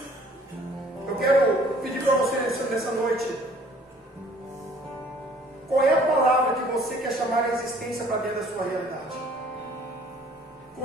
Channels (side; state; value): both; normal; correlation 0.55